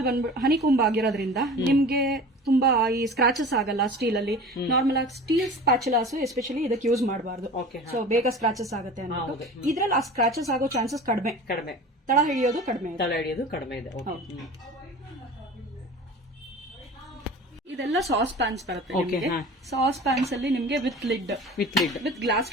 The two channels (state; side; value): normal; both; correlation 0.38